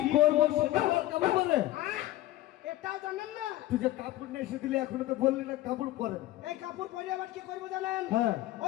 করবো সেটা আমার কাপড় বলে? এটাও জানেন না? তুই যে কাপড় নিয়ে এসে দিলি এখনো তো বললি না কাপড় পরেন। এই কাপড় পরে আবার কি করবো জানেন? হ্যাঁ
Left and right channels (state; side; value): quieter; right; 15.3 dB